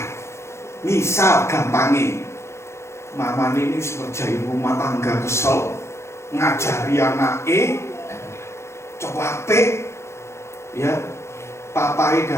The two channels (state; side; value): late; right; 0.13 ms